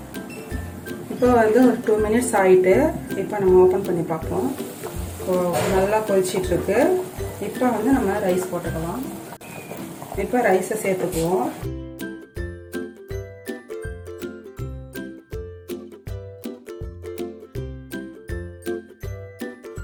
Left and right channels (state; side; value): identical; both; correlation 1.00